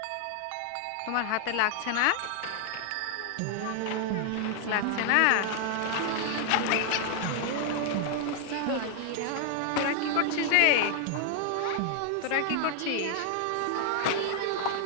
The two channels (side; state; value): both; different; correlation 0.00